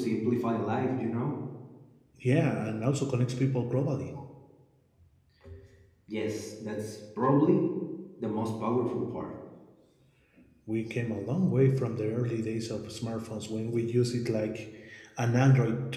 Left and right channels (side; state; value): both; identical; correlation 1.00